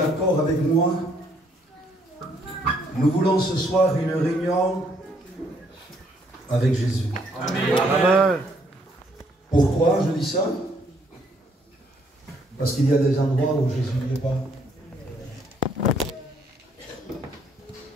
avec moi? Nous voulons ce soir une réunion avec Jésus. Amen. Amen. Pourquoi je dis ça? Parce qu'il y a des endroits où Jésus n'est pas.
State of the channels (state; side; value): normal; both; correlation 0.68